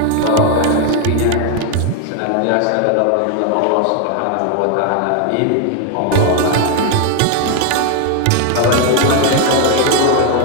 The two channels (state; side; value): different; both; correlation 0.01